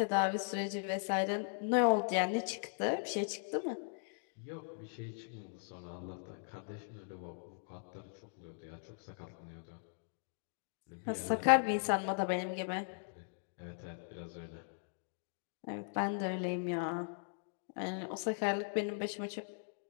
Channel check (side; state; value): right; silent; digital silence